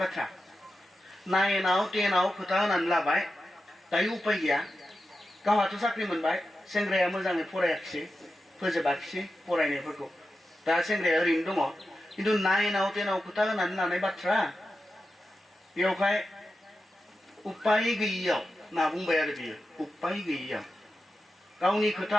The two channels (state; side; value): normal; both; correlation 0.91